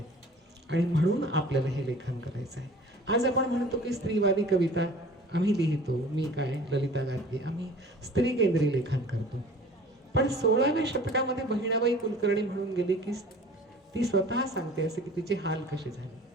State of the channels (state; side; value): normal; both; correlation 0.46